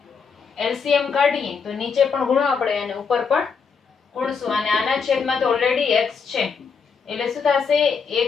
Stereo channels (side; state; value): right; quieter; 5.7 dB